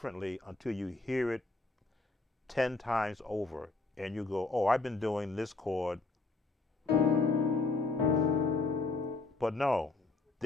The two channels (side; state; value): right; quieter; 3.5 dB